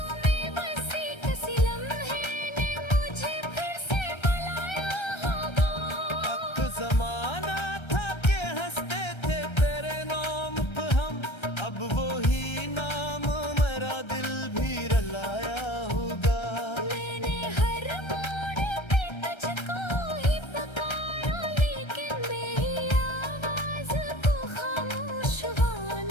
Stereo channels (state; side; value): late; right; 1.3 ms